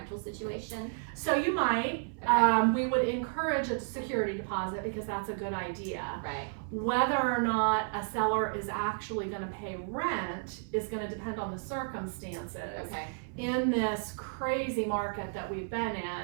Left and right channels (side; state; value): left; silent; 56 dB below the other